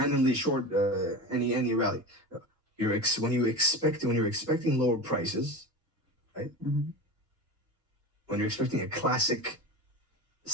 short any rally. When you're expecting lower prices, right? When you're expecting a classic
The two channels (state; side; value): normal; both; correlation 0.29